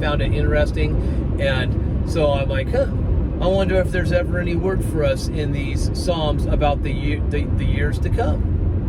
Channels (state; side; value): identical; both; correlation 1.00